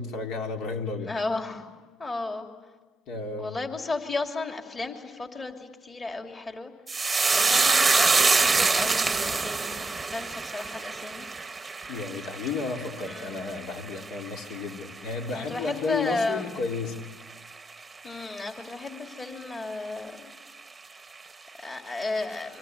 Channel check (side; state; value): both; normal; correlation 0.83